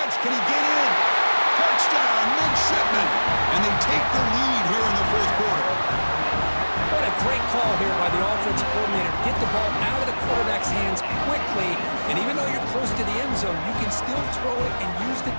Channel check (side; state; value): both; inverted; correlation -1.00